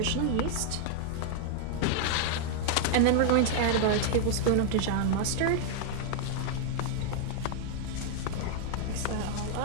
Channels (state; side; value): different; both; correlation 0.00